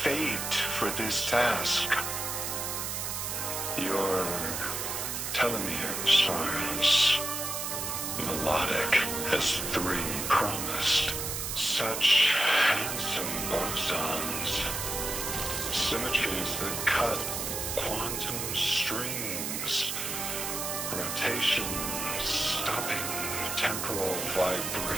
for this task. Your telomeres are as melodic as 3 promised. Such handsome bosons. Symmetries that cut quantum strings. Rotation stopping temporal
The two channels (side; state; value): right; noise; hiss, 3 dB below the sound